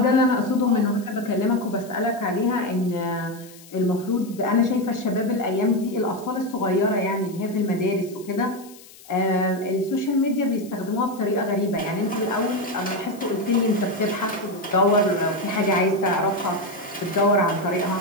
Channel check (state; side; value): noise; left; hiss, 22 dB below the sound